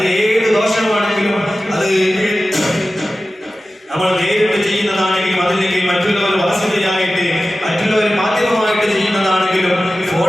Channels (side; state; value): both; normal; correlation 0.95